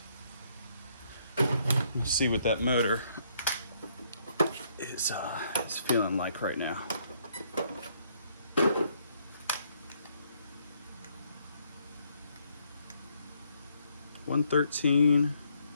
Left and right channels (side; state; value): both; inverted; correlation -0.70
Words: Let's see what that motor is feeling like right now. $113.